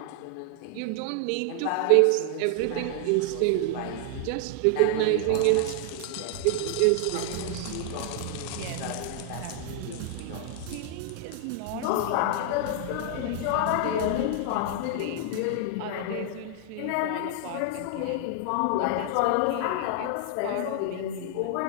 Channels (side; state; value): both; different; correlation 0.00